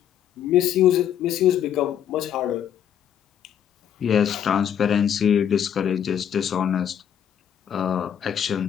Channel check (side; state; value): right; quieter; 9.3 dB